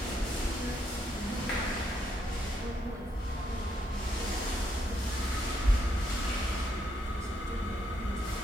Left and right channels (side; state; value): both; normal; correlation 0.76